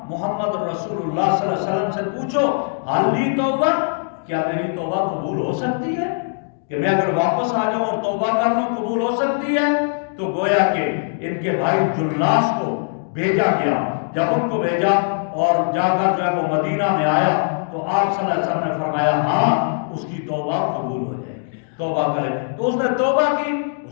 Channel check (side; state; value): right; silent; digital silence